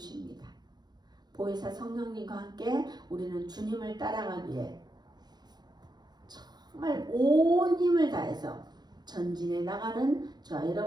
보혜사 성령님과 함께 우리는 주님을 따라가기에 정말 온 힘을 다해서 전진해 나가는 저와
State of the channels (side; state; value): left; late; 0.20 ms